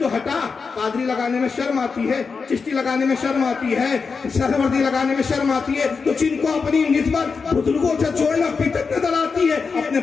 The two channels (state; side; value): quieter; right; 5.0 dB